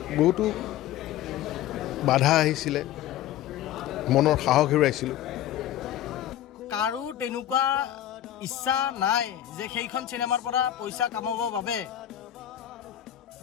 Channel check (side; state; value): right; quieter; 12.1 dB